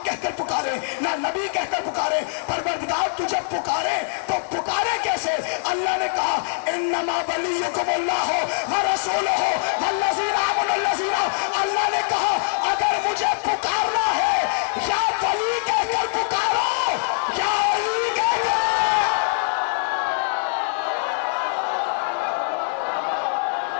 कहकर पुकारे ना नबी कहकर पुकारे, परवरदिगार तुझे पुकारे तो पुकारे कैसे? अल्लाह ने कहा इन्नमा वलियुकुमुल्लाहु व रसूलुहु वल्लज़ीना आमनु। अल्लाह ने कहा अगर मुझे पुकारना है या वली कहकर पुकारो या अली कहकर।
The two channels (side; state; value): right; silent; 57 dB below the other